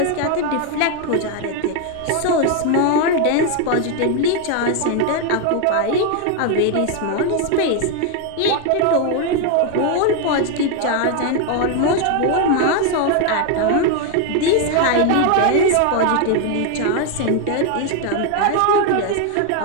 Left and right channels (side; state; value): both; different; correlation 0.01